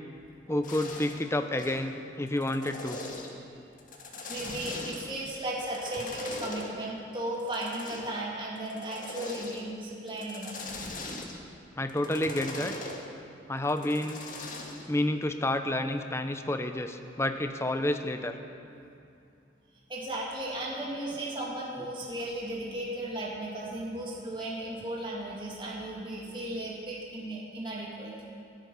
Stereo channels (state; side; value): normal; both; correlation 0.55